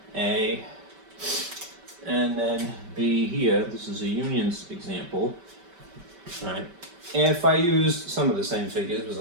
A, and then B here. This is a unions example. All right. If I use some of the same figures, because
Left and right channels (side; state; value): left; late; 5.2 ms